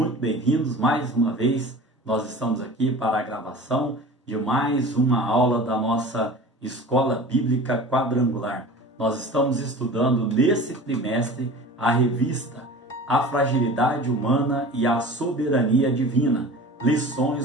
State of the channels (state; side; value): normal; both; correlation 0.39